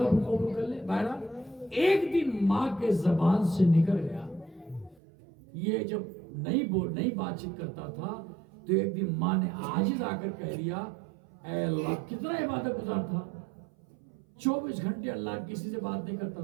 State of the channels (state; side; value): drops out; left; at 5.0 s